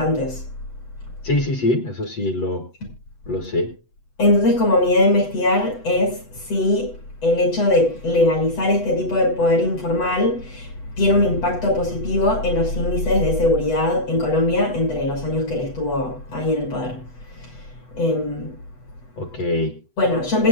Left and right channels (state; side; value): late; right; 8.1 ms